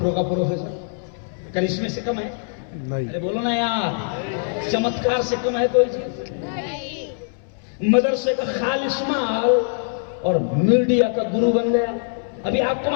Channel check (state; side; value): silent; right; 63 dB below the other